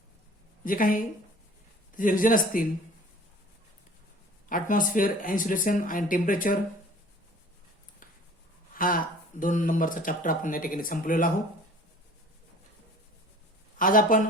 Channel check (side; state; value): both; normal; correlation 0.47